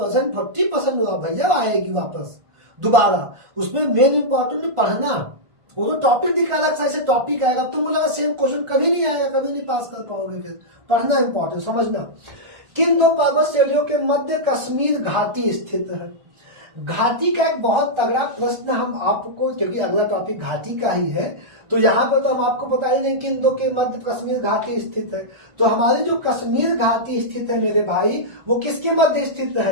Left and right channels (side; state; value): left; late; 1.4 ms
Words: 40% भैया आएगी वापस दोबारा। उसमें मेन इंपॉर्टेंट पढ़ना, वो तो टॉपिक दिखा रहा है, टॉपिक आएगा। तुम बोला सेम क्वेश्चन कभी नहीं आएगा, कभी नहीं पास कर पाओगे। फिर पढ़ना इंपॉर्टेंट, समझना। किन 2 पर्वत श्रेणियों के मध्य कश्मीर घाटी स्थित है? घाटी का एक बहुत तगड़ा प्रश्न हम आपको, क्योंकि अगला टॉपिक घाटी का ही है, तो यहाँ पर तो हम आपको बता ही नहीं किन 2 के मध्य कश्मीर घाटी स्थित है। तो हमारी जो कश्मीर घाटी स्थित है मेरे भाई, वो किसके मध्य स्थित